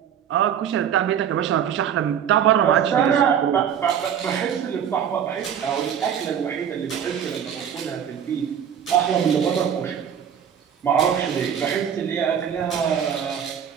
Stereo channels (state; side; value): quieter; left; 8.6 dB